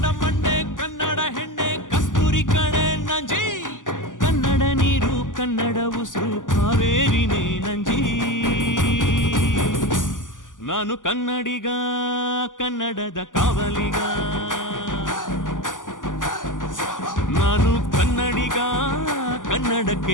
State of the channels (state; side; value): late; right; 0.88 ms